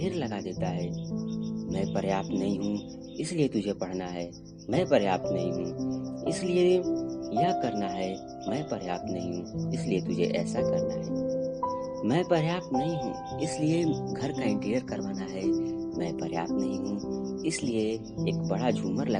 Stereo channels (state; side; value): identical; both; correlation 1.00